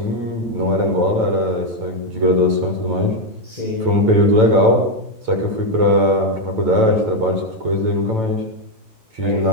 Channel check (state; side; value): late; left; 9.0 ms